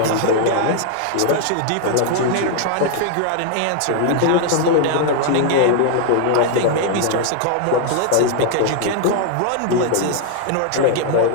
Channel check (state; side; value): different; both; correlation 0.00